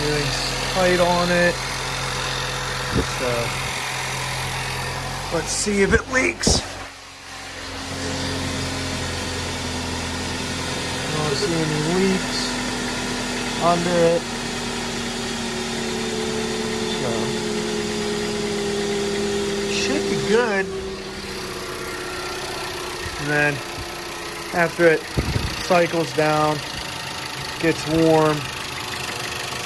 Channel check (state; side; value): identical; both; correlation 1.00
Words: Everything's tight on it, so let's see if it leaks. I don't see any leaks under it, so should be good. And then after it cycles down, gets warm,